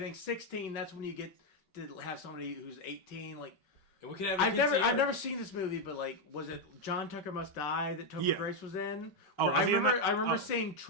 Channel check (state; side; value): late; right; 5.4 ms